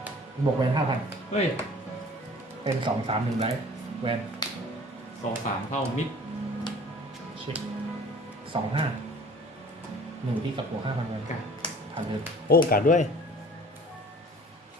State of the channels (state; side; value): normal; both; correlation 0.48